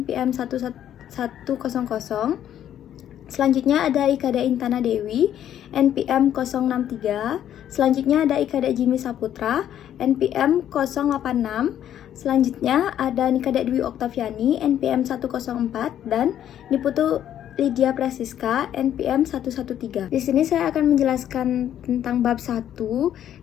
11100. Selanjutnya ada Ikada Intana Dewi, NPM 063. Selanjutnya ada Ikada Jimmy Saputra, NPM 086. Selanjutnya ada Nikada Dwi Oktaviani, NPM 104, dan Niputu Lydia Prasiska, NPM 113. Di sini saya akan menjelaskan tentang bab 1,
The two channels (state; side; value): quieter; right; 10.7 dB